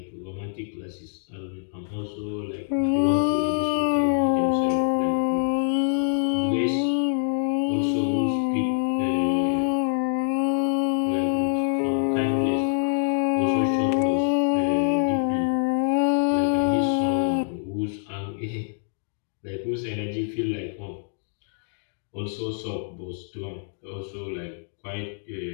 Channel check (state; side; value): silent; right; 62 dB below the other